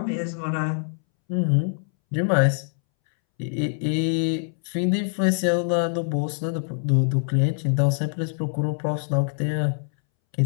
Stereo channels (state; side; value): silent; right; 62 dB below the other